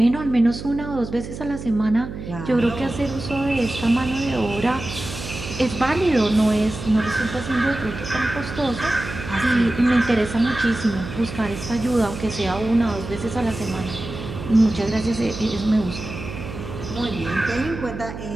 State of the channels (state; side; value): noise; right; hum, 10 dB below the sound